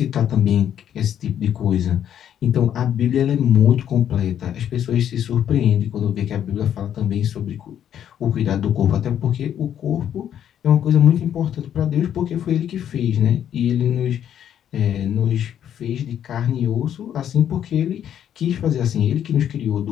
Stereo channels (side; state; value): right; quieter; 9.8 dB